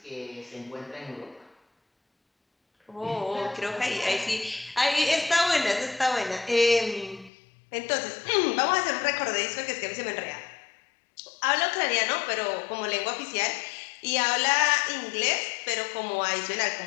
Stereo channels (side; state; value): right; drops out; at 7.3 s